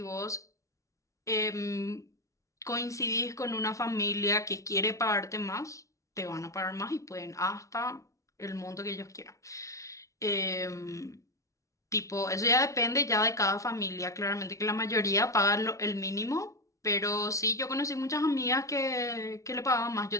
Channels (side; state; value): right; late; 0.15 ms